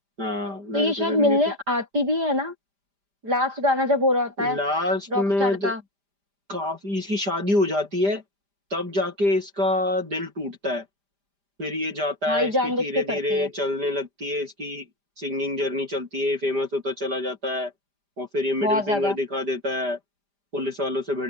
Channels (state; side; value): late; left; 5.0 ms